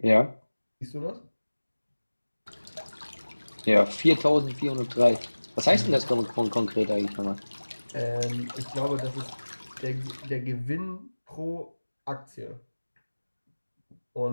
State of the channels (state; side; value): inverted; both; correlation -1.00